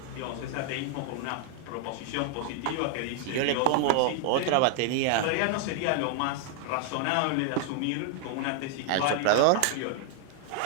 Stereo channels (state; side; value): different; both; correlation 0.00